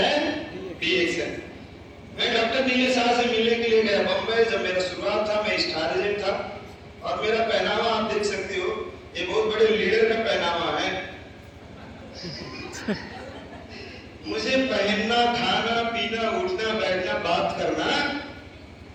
डीएक्शन। मैं डॉक्टर नीलेश शाह से मिलने के लिए गया बम्बई। जब मेरा शुरुआत था, मैं स्टार एजेंट था और मेरा पहनावा आप देख सकते हो, ये बहुत बड़े लीडर का पहनावा है। मुझे पहनना, खाना, पीना, उठना, बैठना, बात करना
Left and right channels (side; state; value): both; identical; correlation 1.00